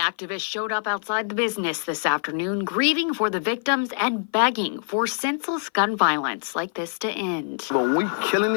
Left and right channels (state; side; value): silent; right; 55 dB below the other